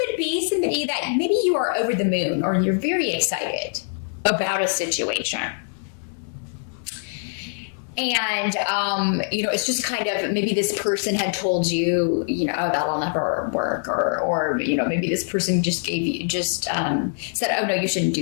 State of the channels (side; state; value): right; silent; digital silence